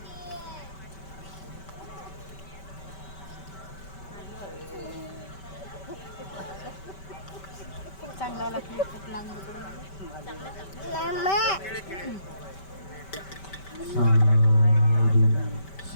चांगला लागला खूप लांब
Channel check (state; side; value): late; right; 5.2 ms